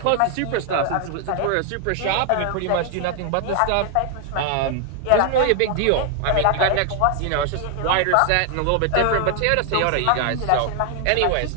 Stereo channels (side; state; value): both; different; correlation 0.00